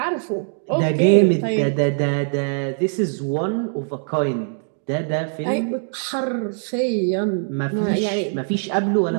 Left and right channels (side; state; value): left; silent; 64 dB below the other